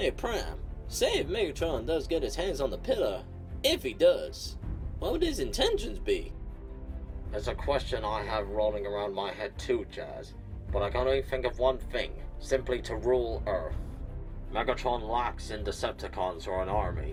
Prime, say if Megatron does get his hands on the pillar, if he does, what would his intentions be? It's a question I have rolling around my head too, Jazz, but I can only think of one thing, simply to rule Earth. Megatron lacks in Decepticons or an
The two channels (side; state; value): both; identical; correlation 1.00